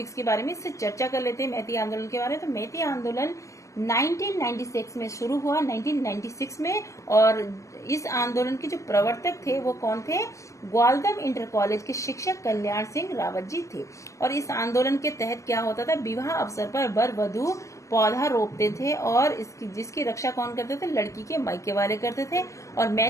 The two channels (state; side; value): late; right; 0.15 ms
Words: के बारे में इससे चर्चा कर लेते हैं मैती आंदोलन के बारे में। तो मैती आंदोलन 1996 में शुरू हुआ, 1996 में। और इस आंदोलन के जो प्रवर्तक थे वो कौन थे? ग्वालदम इंटर कॉलेज के शिक्षक कल्याण सिंह रावत जी थे। और इस आंदोलन के तहत क्या होता था? विवाह अवसर पर वर वधू पौधा रोपते थे और जिसकी रक्षा कौन करते थे? लड़की के मायके वाले करते थे। और